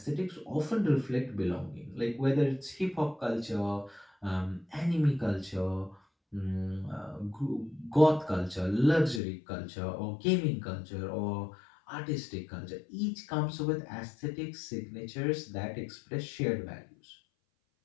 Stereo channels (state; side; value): drops out; right; at 9.2 s